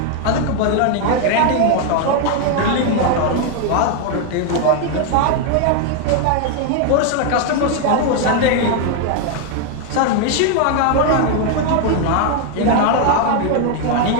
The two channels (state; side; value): different; both; correlation 0.00